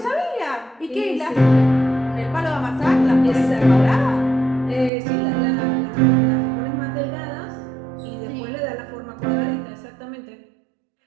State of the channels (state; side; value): drops out; left; at 4.9 s